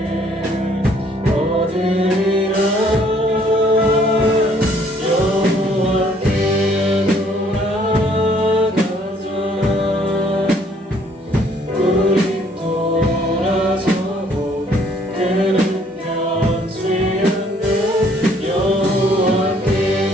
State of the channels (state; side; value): normal; both; correlation 0.62